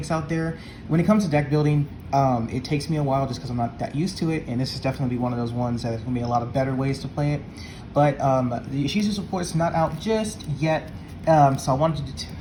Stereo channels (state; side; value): identical; both; correlation 1.00